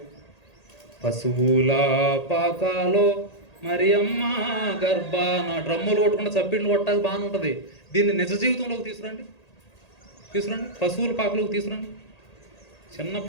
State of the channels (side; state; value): right; late; 1.8 ms